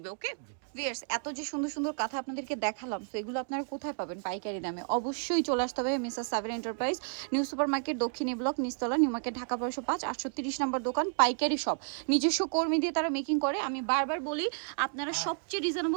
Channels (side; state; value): left; silent; 57 dB below the other